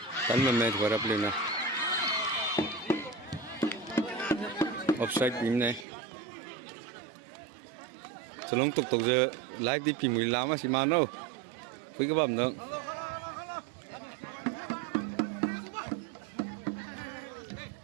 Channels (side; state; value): left; drops out; at 5.9 s